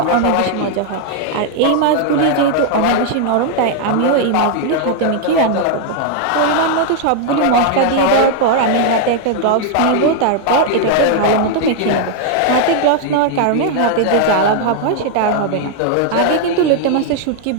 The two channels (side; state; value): both; different; correlation 0.00